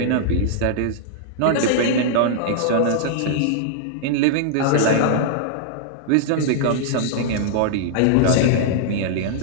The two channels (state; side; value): different; both; correlation -0.01